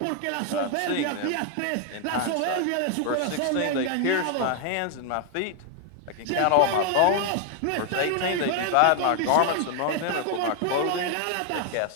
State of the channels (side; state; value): both; different; correlation 0.00